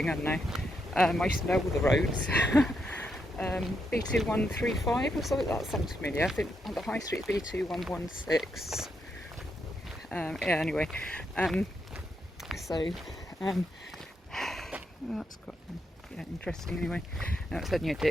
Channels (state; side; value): normal; both; correlation 0.81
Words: I don't know. I used to know all the roads. B2135 or something, that sounds familiar. I think on the high street B2116. Yeah, anyway. That's quite interesting anyway. Now it's only a